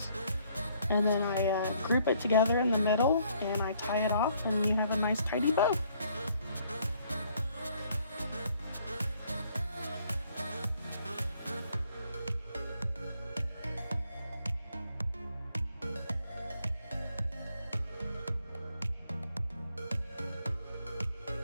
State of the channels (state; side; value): inverted; both; correlation -0.65